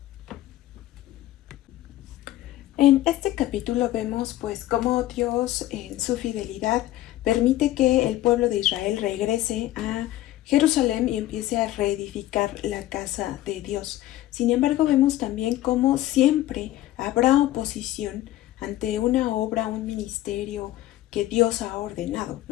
En este capítulo vemos pues cómo Dios en su fidelidad permite que el pueblo de Israel regrese a Jerusalén y empiece a reedificar la casa de Dios. Sin embargo, vemos también cómo siempre habrá oposición ante una obra, un ministerio que Dios ha ordenado,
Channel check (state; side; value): quieter; right; 14.8 dB